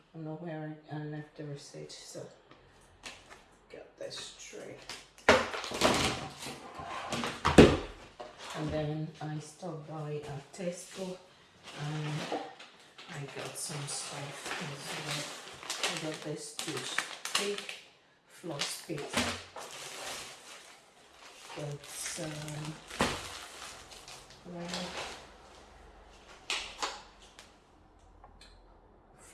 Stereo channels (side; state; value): both; identical; correlation 1.00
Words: don't know where I left the receipt, so got this tray. And then I stopped by at Tesco, and I got some stuff as well. I got this toothpick, floss pick. Got some